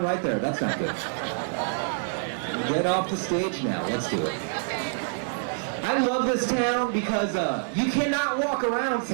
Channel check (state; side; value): silent; left; 60 dB below the other